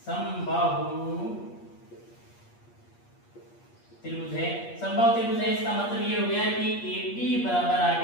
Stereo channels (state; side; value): late; right; 8.5 ms